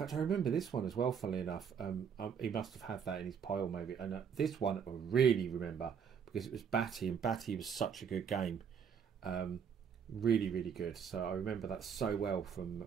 I remember this one as well, funnily enough. He must have had that in his pile maybe. And this one I really remember because it was Batty, and Batty was such a good game. Really good. So I remember that so well from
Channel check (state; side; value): quieter; left; 7.2 dB